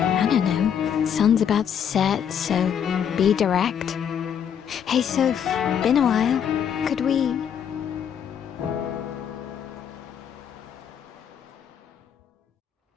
don't know. Sun's about to set, so be direct. Hey, Soph, been a while. Could we...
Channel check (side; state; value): right; quieter; 8.4 dB